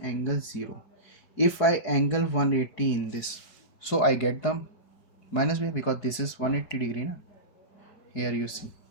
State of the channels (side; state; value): right; late; 4.7 ms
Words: angle 0. If I angle 180 in this, so I get the minus VR because this is 180 degree na? Here you see.